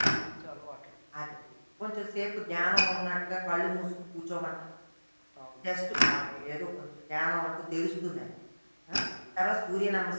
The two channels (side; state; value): both; inverted; correlation -1.00